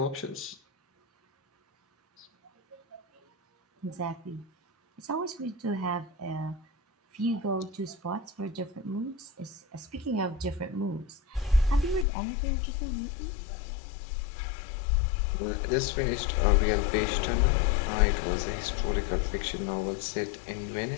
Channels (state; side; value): drops out; right; at 12.1 s